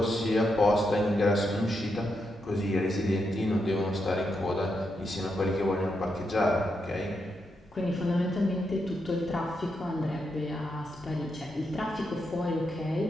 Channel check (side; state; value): both; normal; correlation 0.83